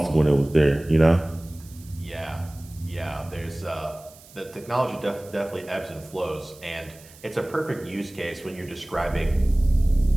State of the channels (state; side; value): noise; right; hiss, 23 dB below the sound